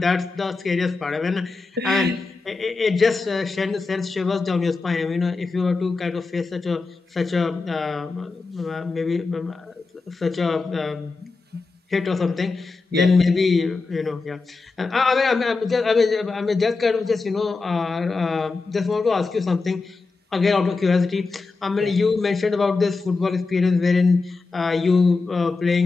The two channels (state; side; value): quieter; right; 4.0 dB